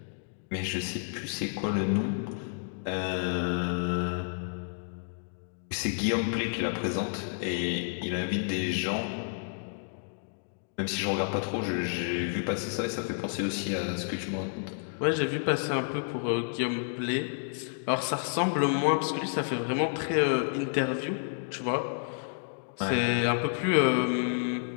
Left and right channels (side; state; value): right; silent; digital silence